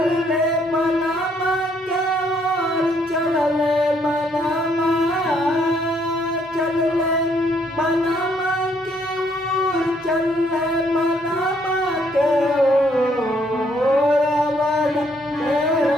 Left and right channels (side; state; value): both; normal; correlation 0.69